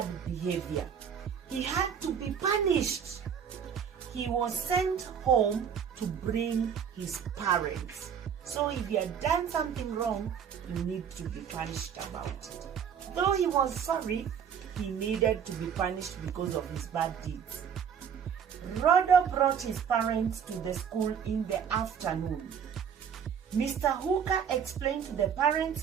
behavior. He had to be punished. He was sent home to bring his parents. So if you had done something wrong, you need to be punished about it. Though he was sorry, he needed to be punished because of his bad deeds. Rodo brought his parents to the school in the afternoon. Mr. Hooker explained to the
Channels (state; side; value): quieter; left; 7.8 dB